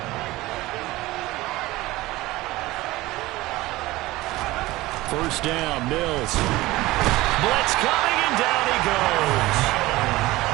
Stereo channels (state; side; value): quieter; left; 18.8 dB